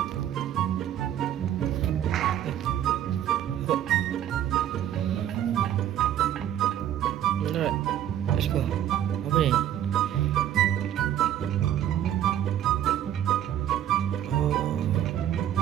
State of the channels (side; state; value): left; quieter; 11.1 dB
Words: Alright. Let's go. Apa ni?